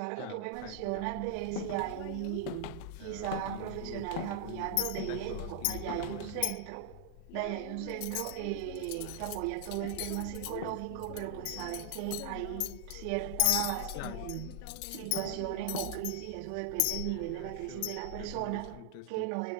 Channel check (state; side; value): different; both; correlation 0.00